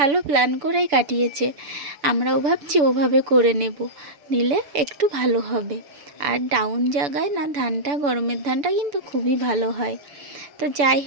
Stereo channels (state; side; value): late; left; 7.0 ms